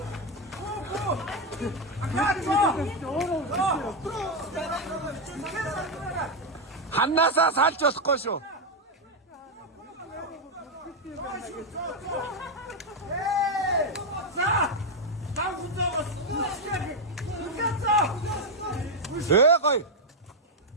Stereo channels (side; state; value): both; normal; correlation 0.03